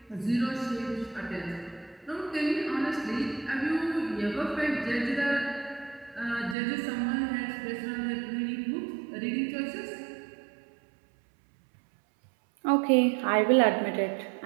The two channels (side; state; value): left; drops out; at 6.6 s